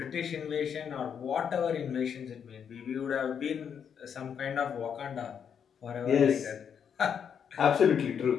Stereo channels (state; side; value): quieter; right; 7.6 dB